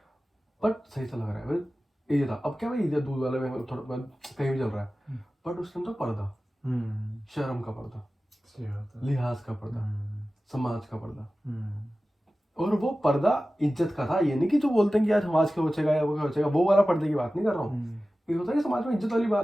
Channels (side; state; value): both; normal; correlation 0.96